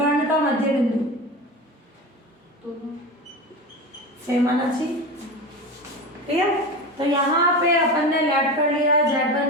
का मध्य बिंदु सेम आना चाहिए। ठीक है, तो यहाँ पे अपन ने लेट कर लिया,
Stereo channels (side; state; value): both; normal; correlation 0.26